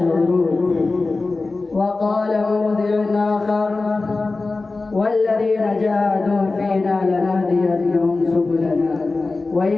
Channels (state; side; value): quieter; right; 3.6 dB